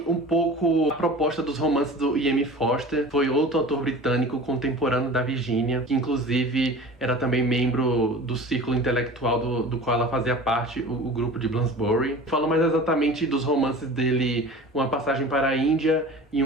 um pouco a proposta dos romances do E.M. Forster. Foi outro autor britânico contemporâneo da Virginia, que inclusive era também membro do círculo intelectual do qual ela fazia parte, o grupo de Bloomsbury. Falou mais exatamente dos romances dele, Uma Passagem para a Índia e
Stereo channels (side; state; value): both; normal; correlation 0.39